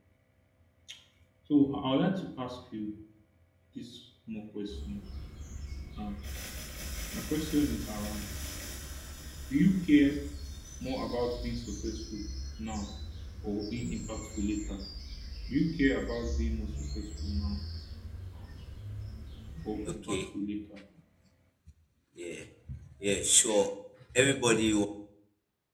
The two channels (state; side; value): identical; both; correlation 1.00